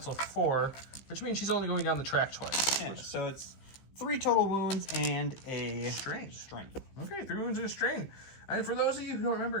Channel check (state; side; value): late; right; 15 ms